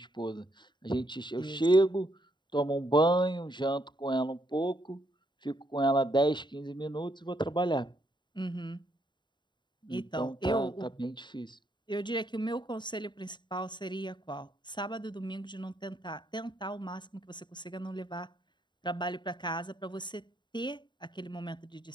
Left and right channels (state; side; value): late; right; 0.22 ms